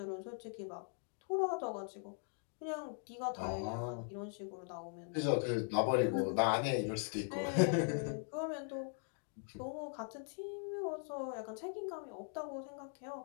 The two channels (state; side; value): silent; right; 51 dB below the other